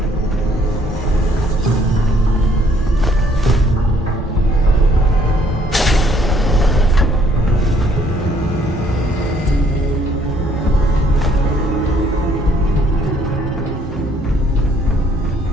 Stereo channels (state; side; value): normal; both; correlation 0.64